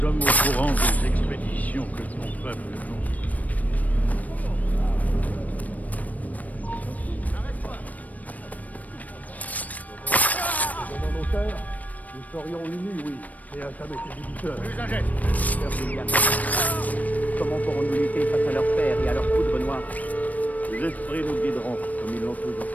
au courant des expéditions que ton peuple conduit. Nous serions unis, oui, et à jamais débiteur. Plus un geste. Comment pourrons-nous lutter face à leur père et à leur poudre noire? Les esprits nous guideront comme ils l'ont toujours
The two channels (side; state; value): right; late; 0.074 ms